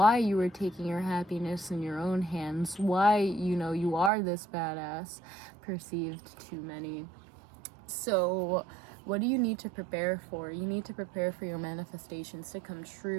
you are taking your happiness in your own hands, why, you are this badass perceived to many. So what do you need to prepare for? You need to prepare for your manifestations to come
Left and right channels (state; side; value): drops out; left; at 4.1 s